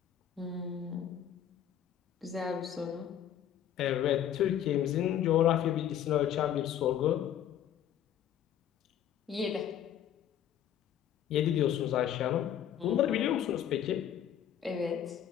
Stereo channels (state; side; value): quieter; right; 10.2 dB